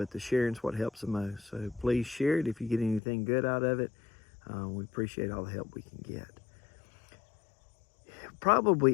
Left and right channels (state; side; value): drops out; right; at 3.0 s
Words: the sharing's what helps the most. So please share it if you get anything good out of it. We appreciate all the help we can get.